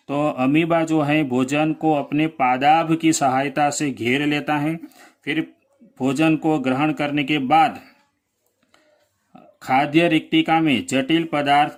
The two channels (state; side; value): identical; both; correlation 1.00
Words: तो अमीबा जो है भोजन को अपने पादाभ की सहायता से घेर लेता है। फिर भोजन को ग्रहण करने के बाद खाद्य रिक्तिका में जटिल पदार्थ